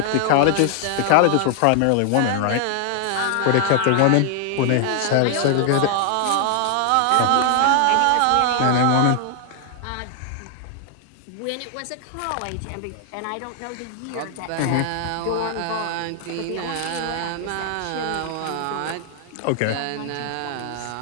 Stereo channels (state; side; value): different; both; correlation 0.00